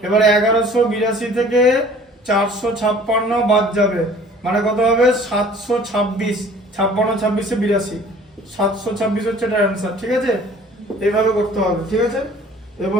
এবারে 1182 থেকে 456 বাদ যাবে মানে কত হবে 726 56 26 82 726 হচ্ছে এটার অ্যান্সার ঠিক আছে এইভাবে করতে হবে ঠিক আছে এই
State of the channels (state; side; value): normal; both; correlation 0.50